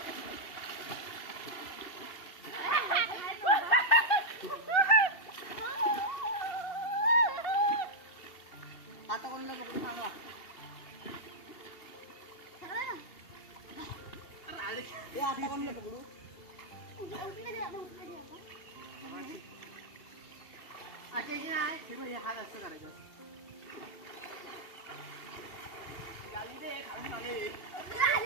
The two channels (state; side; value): late; right; 2.7 ms